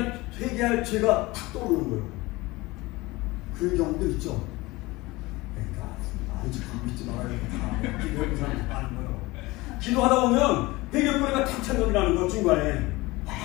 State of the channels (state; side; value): quieter; right; 21.3 dB